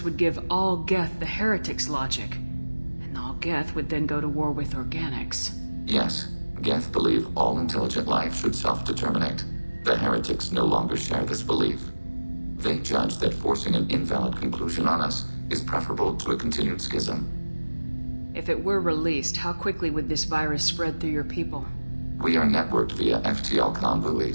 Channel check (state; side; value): inverted; both; correlation -1.00